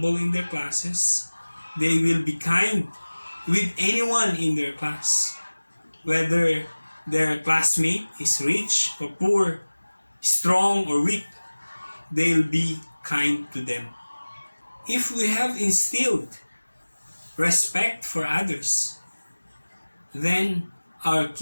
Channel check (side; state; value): both; inverted; correlation -1.00